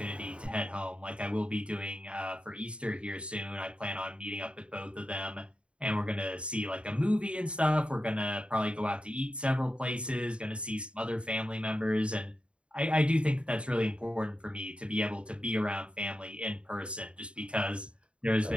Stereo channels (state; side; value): late; left; 0.058 ms